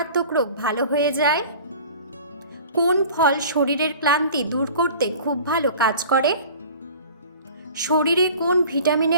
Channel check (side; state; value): both; inverted; correlation -0.43